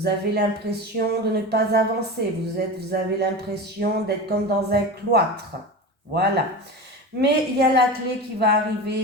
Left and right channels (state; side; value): normal; both; correlation 0.27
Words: avez l'impression de ne pas avancer. Vous avez l'impression d'être comme dans un cloître. Voilà. Mais il y a la clé qui va